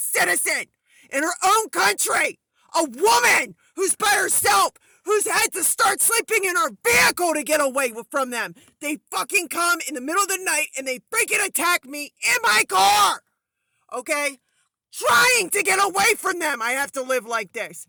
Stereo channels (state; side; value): identical; both; correlation 1.00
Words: in her own country. A woman who's by herself, who's had to start sleeping in her vehicle to get away from them. They fucking come in the middle of the night and they freaking attack me in my car. Okay? Trying to get away from them. I have to live like this.